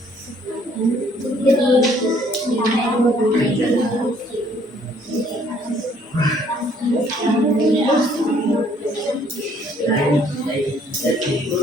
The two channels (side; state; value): both; normal; correlation 0.62